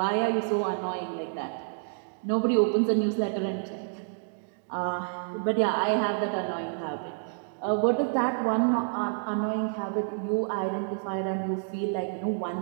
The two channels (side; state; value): left; silent; digital silence